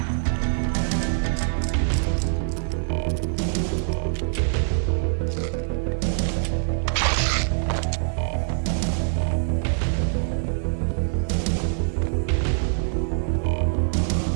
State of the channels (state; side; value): silent; left; digital silence